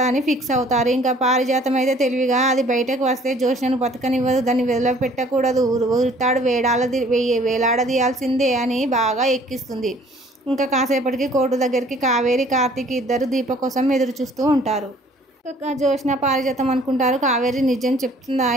ఫిక్స్ అవుతారు. ఇంకా పారిజాతం అయితే తెలివిగా, అది బయటకు వస్తే జోష్నను బతకనివ్వదు, దాన్ని వదిలిపెట్టకూడదు, ఉరితాడు వేలాడదీయాల్సిందే అని బాగా ఎక్కిస్తుంది. ఇంకా కాసేపటికి కోర్టు దగ్గరికి కావేరి, కార్తీక్ ఇద్దరు దీప కోసం ఎదురు చూస్తూ ఉంటారు. జోష్న పారిజాతం అనుకుంటారు. కావేరి నిజం చెప్తుందా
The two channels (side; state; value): both; normal; correlation 0.56